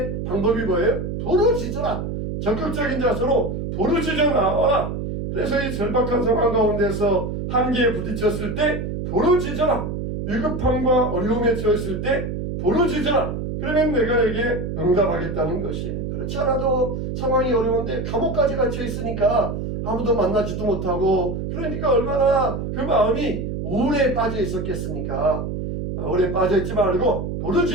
방법이 뭐예요? 부르짖어라. 적극적인 자세로 부르짖어 나와라. 그래서 이 절박한 상황 가운데서 한계에 부딪혔을 때 부르짖어라. 위급함과 어려움에 처했을 때 부르짖어라. 그러면 내가 에게 응답하겠다는 것이에요. 그렇지 않아도 상황이 어려운데 감옥까지 갇혀 있으니까 아무도 만나지도 못하고, 그러니까 얼마나 그 마음이 우울에 빠져 있었겠습니까? 우울에 빠져 있지 말고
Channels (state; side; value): noise; right; hum, 4 dB below the sound